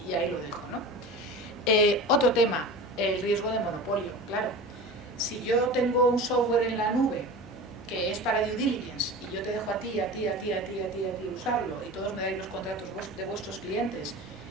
y ahí lo dejo, ¿no? Otro tema, el riesgo de monopolio, claro. Si yo tengo un software en la nube que es para due diligence y yo te dejo a ti usarlo y todos me dais los contratos de vuestros clientes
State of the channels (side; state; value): both; normal; correlation 0.33